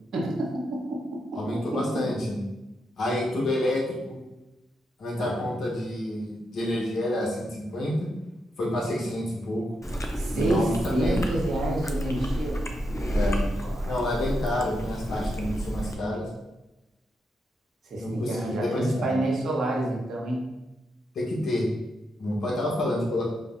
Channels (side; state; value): both; normal; correlation 0.83